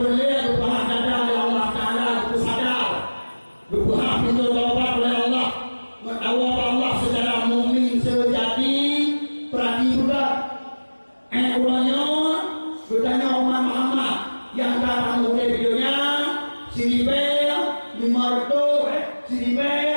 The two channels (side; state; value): both; inverted; correlation -1.00